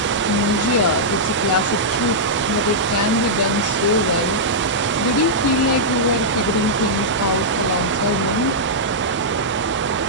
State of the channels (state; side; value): normal; both; correlation -0.10